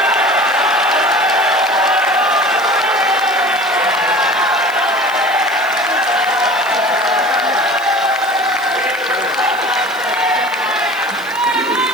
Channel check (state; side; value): noise; right; hiss, 20 dB below the sound